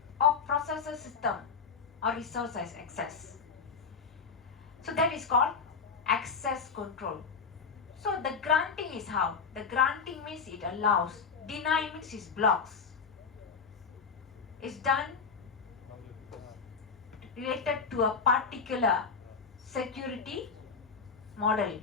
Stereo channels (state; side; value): quieter; right; 5.4 dB